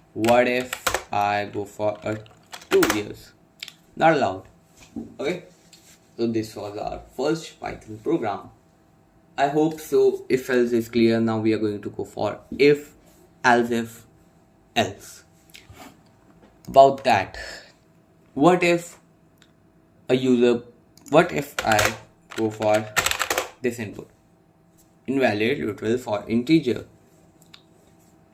What if I go for a 2 years? Not allowed. Okay, so this was our first Python program. I hope so. If else is clear. Now we are going to go for if, else if, else. About that, what if I go for this input? Invalid literal for integer.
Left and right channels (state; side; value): identical; both; correlation 1.00